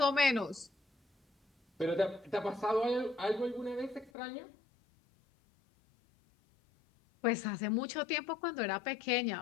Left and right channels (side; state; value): right; drops out; at 4.1 s